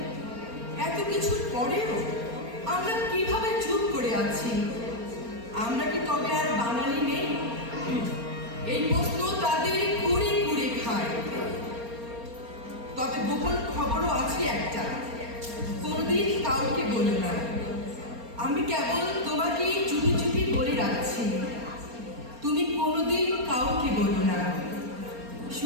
এত কিছুর পরেও আমরা কিভাবে চুপ করে আছি? আমরা কি তবে আর বাঙালি নেই? এই প্রশ্ন তাদের কুড়ে কুড়ে খায়। তবে গোপন খবরও আছে একটা, কোনোদিন কাউকে বলো না। আমি কেবল তোমাকেই চুপি চুপি বলে রাখছি, তুমি কোনোদিন কাউকে বলো না।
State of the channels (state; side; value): late; left; 4.3 ms